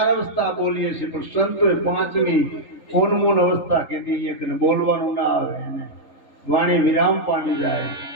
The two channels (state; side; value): late; right; 3.8 ms